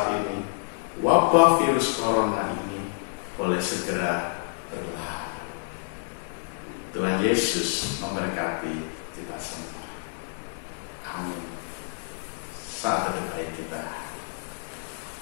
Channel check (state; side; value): silent; right; 59 dB below the other